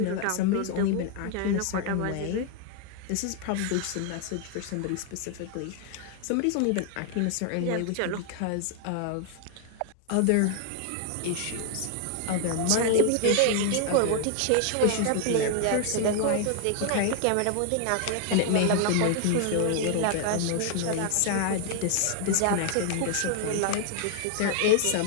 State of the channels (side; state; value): both; different; correlation 0.00